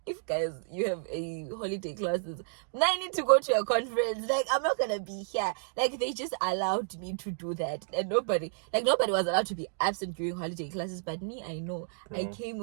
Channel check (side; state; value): left; silent; digital silence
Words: if guys you have a holiday classes, now I need to go to a conference. Like I'm not gonna be here. Like they just allowed me to do that, and nobody was allowed to be absent during holiday classes. But me, I know I came